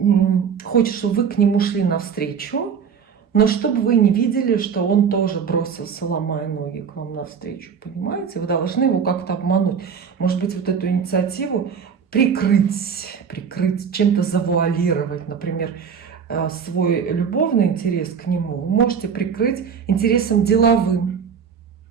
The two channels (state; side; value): quieter; left; 6.8 dB